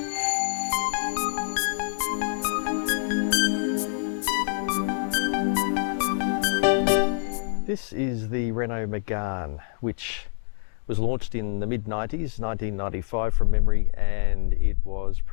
This is the Renault Megane, which was launched in the mid-90s, 1995 from memory, and it was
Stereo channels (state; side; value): silent; right; digital silence